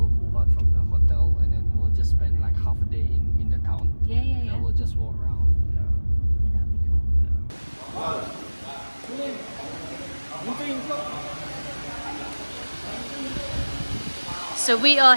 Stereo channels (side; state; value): both; inverted; correlation -1.00